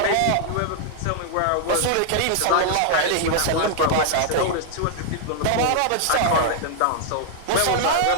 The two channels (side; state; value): both; different; correlation -0.01